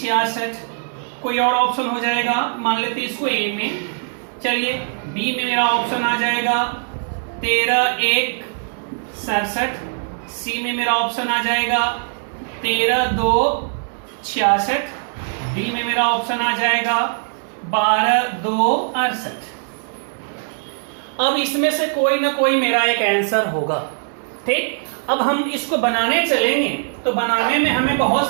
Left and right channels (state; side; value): silent; left; digital silence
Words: कोई और ऑप्शन हो जाएगा, मान लेते इसको ए में। चलिए बी में मेरा ऑप्शन आ जाएगा 13 1 67। सी में मेरा ऑप्शन आ जाएगा 13 2 66। डी में मेरा ऑप्शन आ जाएगा 12 2 68। अब इसमें से कोई ना कोई मेरा एक आंसर होगा। ठीक, अब हम इसको बनाने चलेंगे तो बनाने में हमें